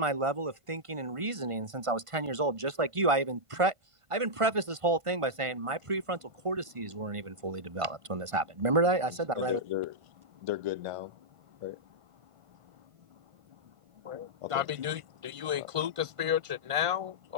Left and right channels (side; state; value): left; late; 1.5 ms